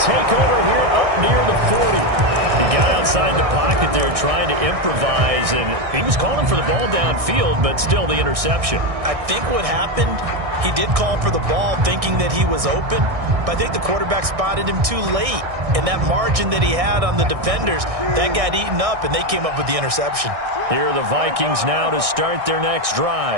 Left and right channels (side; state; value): left; late; 1.6 ms